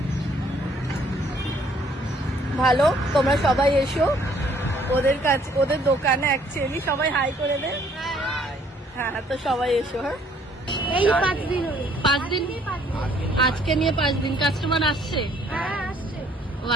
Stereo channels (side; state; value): both; normal; correlation 0.63